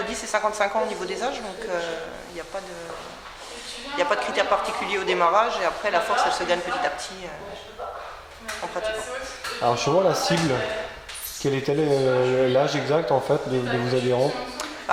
10 et 55 ans au niveau des âges, donc il n'y a pas de critères particuliers au démarrage, et après, la force, elle se gagne petit à petit en pratiquant. Alors, justement, la cible, quel est l'âge exact, en fait, de vos adhérents?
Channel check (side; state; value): both; identical; correlation 1.00